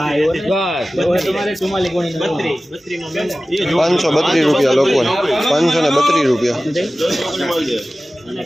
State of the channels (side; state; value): both; normal; correlation 0.96